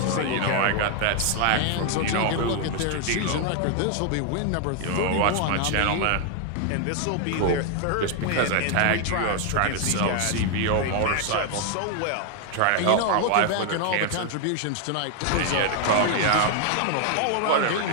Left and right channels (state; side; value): different; both; correlation 0.00